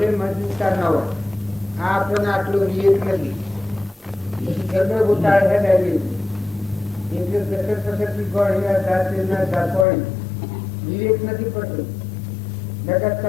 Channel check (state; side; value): drops out; right; at 9.9 s